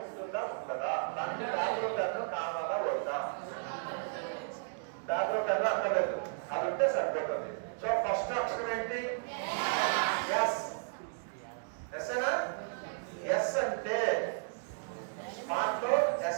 ఉంటుందా ఉంటుందా? దానికి దాంట్లో పెన్ను కావాలా వద్దా? దాంట్లో పెన్ను అక్కర్లేదు, అది ఉంటే సరిపోతుంది. సో ఫస్ట్ అక్షరం ఏంటి? ఎస్. ఎస్ఏనా? ఎస్ అంటే స్మార్ట్ లో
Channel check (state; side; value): silent; left; digital silence